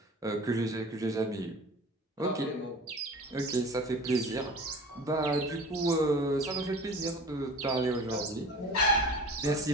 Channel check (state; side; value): normal; both; correlation 0.40